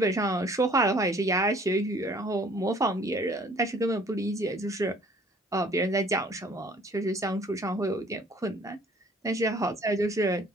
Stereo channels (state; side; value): normal; both; correlation 0.55